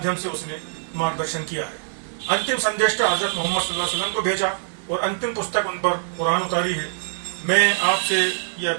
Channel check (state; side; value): silent; left; digital silence